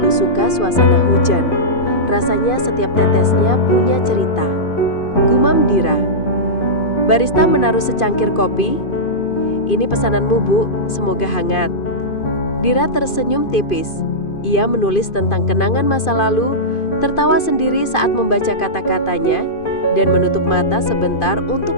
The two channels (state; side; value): late; right; 2.5 ms